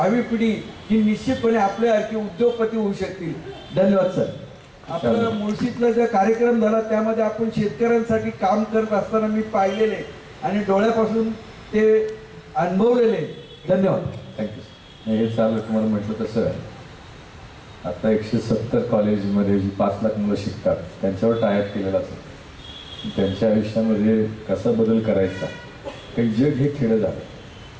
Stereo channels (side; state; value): both; identical; correlation 1.00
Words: पिढी ही निश्चितपणे आपल्यासारखी उद्योगपती होऊ शकतील. धन्यवाद सर. आपलं मुळशीतला जो कार्यक्रम झाला त्यामध्ये आपण शेतकऱ्यांसाठी काम करत असताना मी पाहिलेले आणि डोळ्यापासून ते अनुभवलेले. धन्यवाद. थँक्यू. हे चालू तुम्हाला म्हटलं तसं आहे, आता 170 कॉलेजमध्ये जी 5 लाख मुलं शिकतात त्यांच्यावर टायप केलेला असतो. त्यांच्या आयुष्यामध्ये कसा बदल करायचा, काही जग हे खेळं झालं.